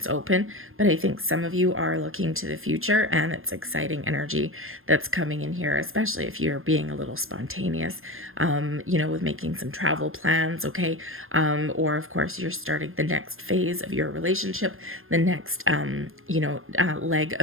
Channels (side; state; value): left; late; 0.60 ms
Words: open, but I think some of you are looking to the future, and it's exciting energy that's coming in here, especially if you're being a little spontaneous, with making some travel plans. Okay. Or of course you're starting the next phase of your relationship, the next, leg